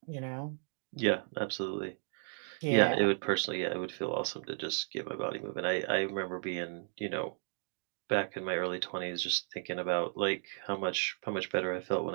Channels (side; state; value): left; silent; 55 dB below the other